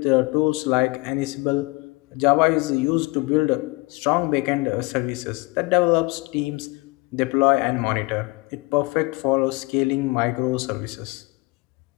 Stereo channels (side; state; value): right; quieter; 25.3 dB